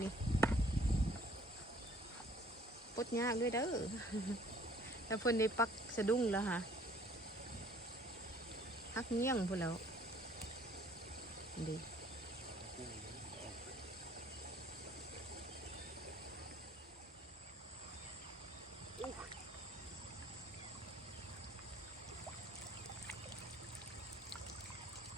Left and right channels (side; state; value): both; normal; correlation 0.57